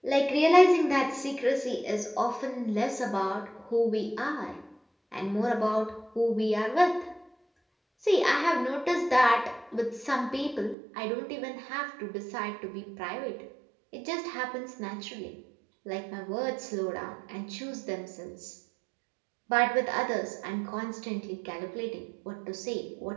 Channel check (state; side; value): drops out; left; at 10.8 s